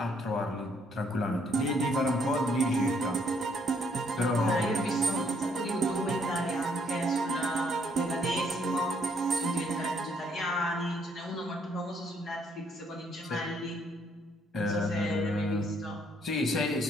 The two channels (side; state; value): both; normal; correlation 0.68